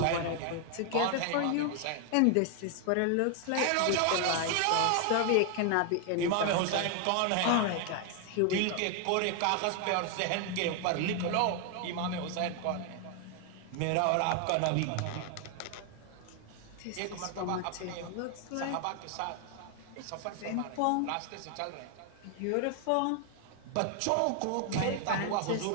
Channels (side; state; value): both; different; correlation 0.00